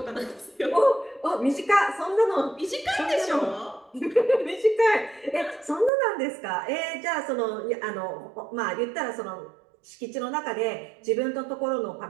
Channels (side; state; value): left; drops out; at 5.9 s